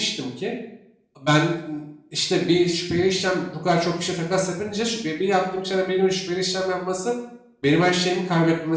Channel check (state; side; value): identical; both; correlation 1.00